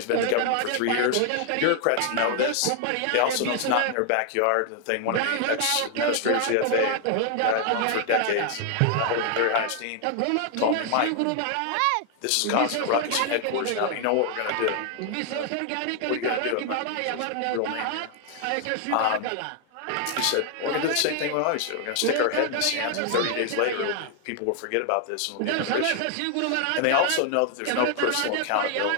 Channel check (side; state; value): both; different; correlation 0.00